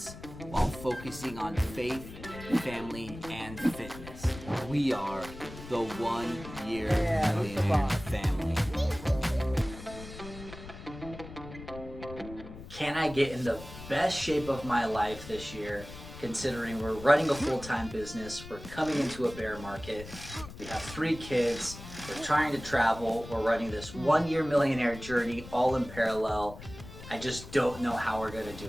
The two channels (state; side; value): noise; left; rumble, 14 dB below the sound